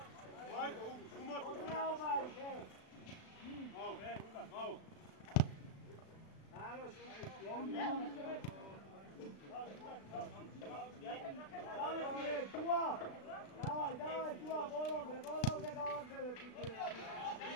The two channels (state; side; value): late; right; 36 ms